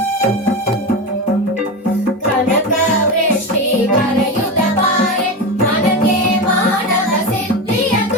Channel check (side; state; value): both; normal; correlation 0.19